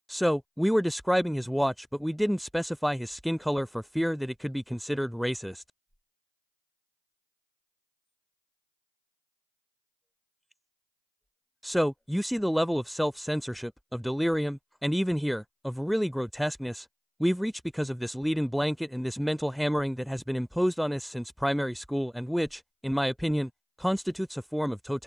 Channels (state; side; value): identical; both; correlation 1.00